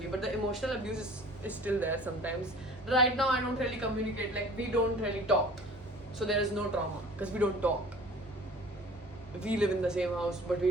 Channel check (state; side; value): normal; both; correlation 0.46